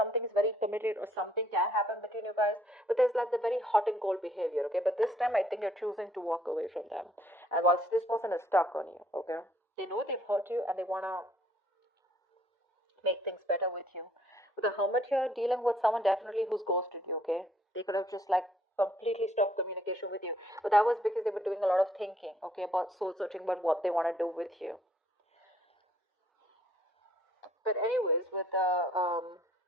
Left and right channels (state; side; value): normal; both; correlation 0.63